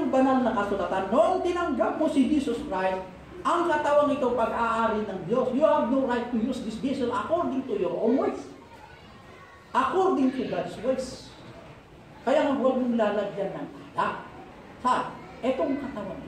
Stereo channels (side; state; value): both; identical; correlation 1.00